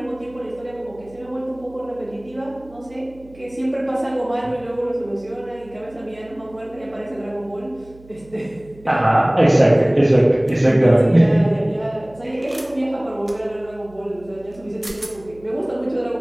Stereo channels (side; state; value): right; noise; hum, 23 dB below the sound